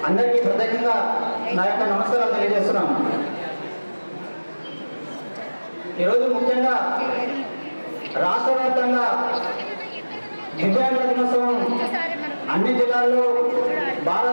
అందరికీ ప్రత్యేకంగా నా యొక్క నమస్కారాలు తెలియజేస్తున్నాను. ఈరోజు ముఖ్యంగా రాష్ట్ర వ్యాప్తంగా దివ్యాంగుల దినోత్సవం అన్ని జిల్లాల్లో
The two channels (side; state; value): both; inverted; correlation -1.00